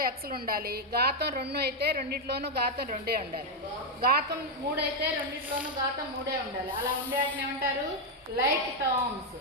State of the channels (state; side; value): normal; both; correlation 0.01